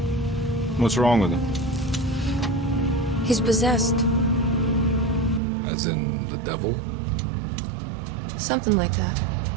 What's wrong with him? He's possessed. As in the devil? Something like that.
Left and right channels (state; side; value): drops out; left; at 5.4 s